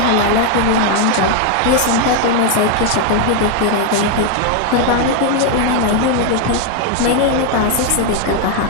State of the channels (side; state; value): both; different; correlation 0.01